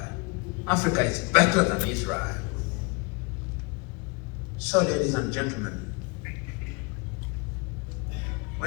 Africa is better than Israel. So, ladies and gentlemen,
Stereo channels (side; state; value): right; quieter; 29.9 dB